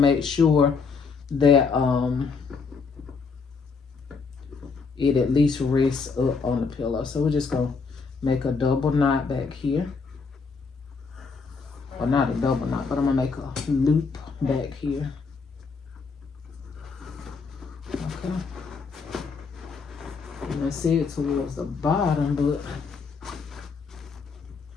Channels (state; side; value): quieter; right; 5.0 dB